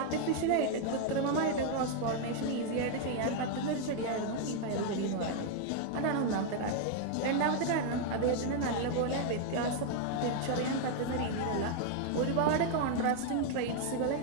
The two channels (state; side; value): different; both; correlation 0.00